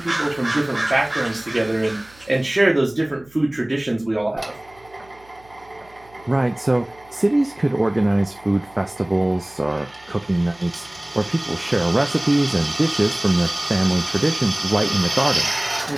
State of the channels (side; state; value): right; noise; hum, 28 dB below the sound